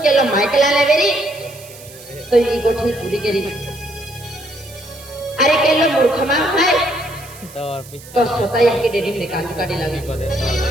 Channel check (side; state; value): right; noise; hiss, 19 dB below the sound